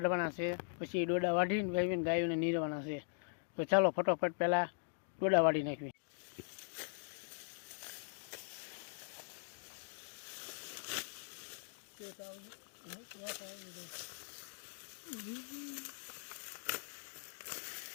છે, પછી ડોડા વાઢીને વાવીને ગાયોને નીરવાના છે। તો ચાલો ફટાફટ પહેલાં ડોડા વાઢી નાખવી।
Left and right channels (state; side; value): silent; right; digital silence